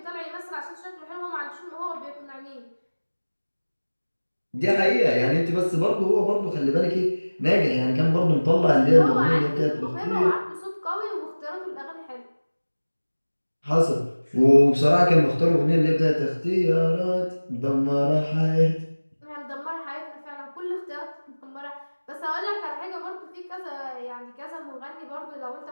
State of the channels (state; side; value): inverted; both; correlation -1.00